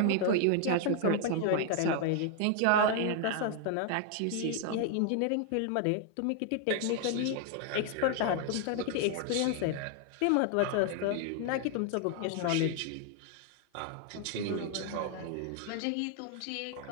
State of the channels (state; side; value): different; both; correlation 0.00